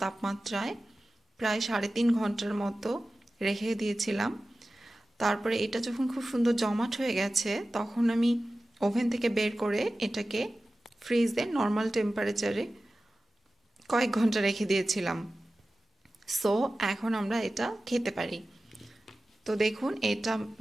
তাপমাত্রায় প্রায় 3.5 ঘন্টার মতো রেখে দিয়েছিলাম। তারপরে এটা যখন খুব সুন্দর জমাট হয়ে গেছে, তখন আমি ওভেন থেকে বের করে এটাকে ফ্রিজে নর্মাল টেম্পারেচারে কয়েক ঘন্টা রেখে দিয়েছিলাম। সো এখন আমরা এটা খেতে পারি। তো দেখুন, এটা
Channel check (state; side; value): normal; both; correlation 0.95